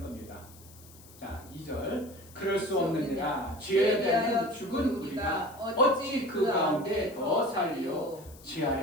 겁니다. 자, 2절. 그럴 수 없느니라. 죄에 대하여 죽은 우리가 어찌 그 가운데 더 살리요. 죄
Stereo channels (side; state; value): left; noise; hiss, 22 dB below the sound